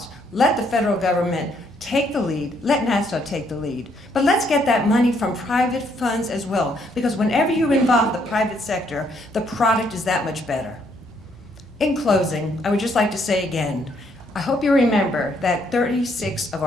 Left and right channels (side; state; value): both; normal; correlation 0.70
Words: Let the federal government take the lead, let NASA take the lead. But let's get that money from private funds as well, because whenever you involve the private sector, the product is that much better. In closing, I would just like to say again, I hope you remember that 36 of